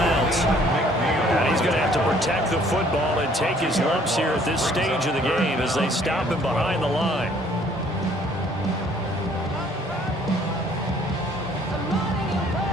And he's going to have to protect the football and take his lumps here at this stage of the game as they stop him behind the line.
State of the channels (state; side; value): normal; both; correlation 0.59